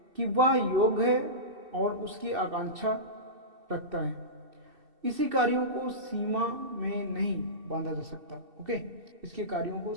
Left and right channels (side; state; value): left; late; 2.7 ms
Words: कि वह योग्य है और उसकी आकांक्षा रखता है। इसी कार्यों को सीमा में नहीं बांधा जा सकता। ओके, इसके कार्यों को